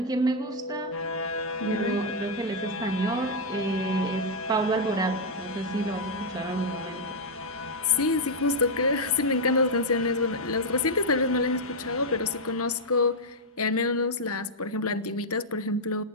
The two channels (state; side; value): normal; both; correlation -0.03